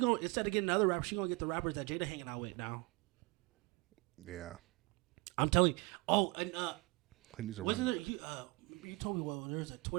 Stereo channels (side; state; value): left; quieter; 25.4 dB